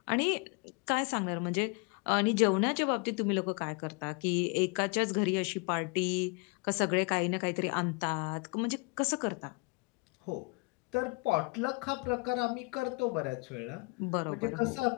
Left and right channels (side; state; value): right; quieter; 30.9 dB